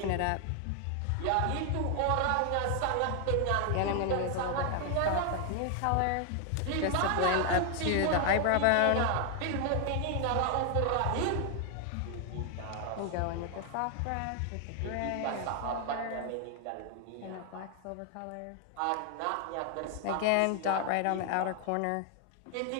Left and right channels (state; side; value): different; both; correlation 0.00